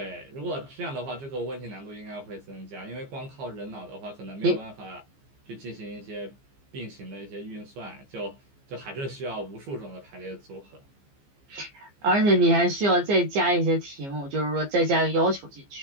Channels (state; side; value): late; left; 15 ms